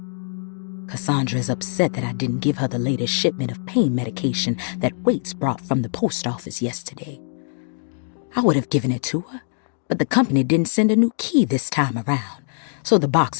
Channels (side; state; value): right; silent; 64 dB below the other